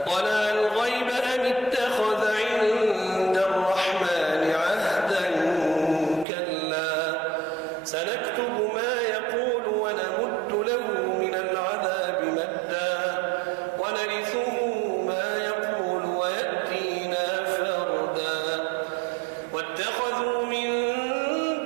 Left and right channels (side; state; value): left; drops out; at 6.2 s